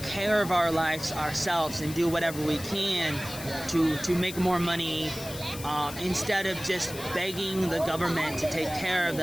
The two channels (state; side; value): noise; left; hiss, 12 dB below the sound